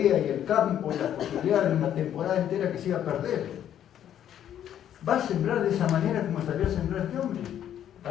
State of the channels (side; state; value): right; quieter; 10.4 dB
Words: y el campo y la posibilidad de una temporada entera que se iba a perder, va a sembrar de esa manera como salió a sembrar este hombre.